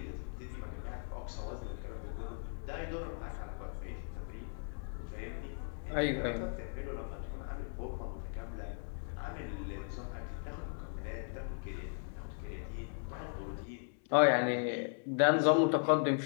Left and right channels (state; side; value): silent; right; digital silence